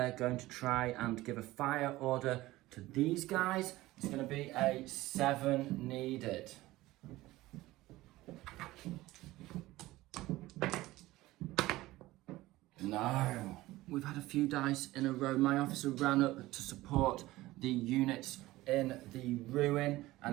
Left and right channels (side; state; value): left; quieter; 17.8 dB